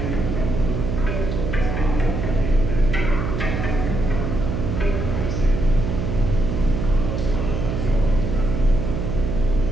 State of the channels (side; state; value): right; noise; hum, 2 dB below the sound